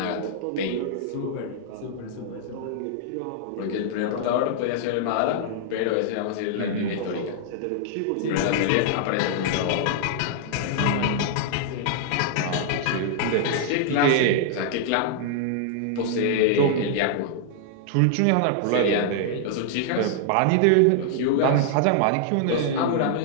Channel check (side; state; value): both; different; correlation -0.01